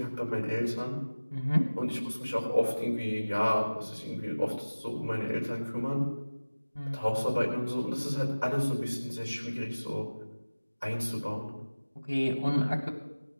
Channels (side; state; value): both; inverted; correlation -1.00